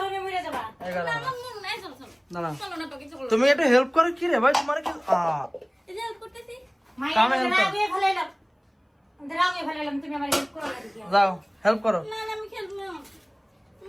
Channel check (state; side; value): identical; both; correlation 1.00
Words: মরে যাবা। এই গরমে। না না তুমি একটু হেল্প করো কি রে ভাই, তোমার কি মাইয়া কামে help করো। রাগে ফেলাইলাম, রাগে ফেলাইলাম, তুমি আমার হেল্প করো না দিদি। যাও হেল্প করো, না আমি খেলবো না।